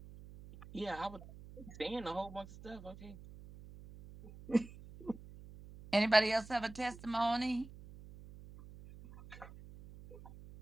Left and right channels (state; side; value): noise; right; hum, 17 dB below the sound